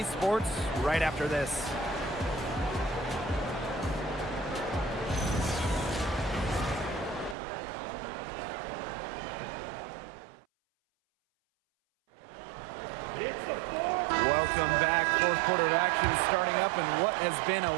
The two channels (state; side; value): drops out; left; at 7.4 s